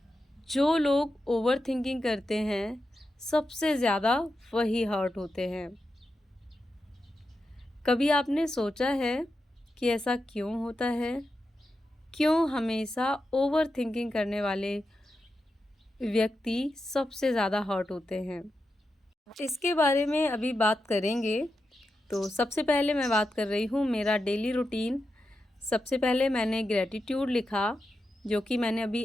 जो लोग ओवर थिंकिंग करते हैं सबसे ज़्यादा वही हर्ट होते हैं। कभी आपने सोचा है कि ऐसा क्यों होता है? क्यों हमेशा ओवर थिंकिंग करने वाले व्यक्ति सबसे ज़्यादा हर्ट होते हैं? इसके बारे में अभी बात करेंगे। तो सबसे पहले मैं बात कर रही हूँ मेरा डेली रूटीन। सबसे पहले मैंने ग्रेटिट्यूड लिखा, जो कि मैंने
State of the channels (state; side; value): normal; both; correlation 0.89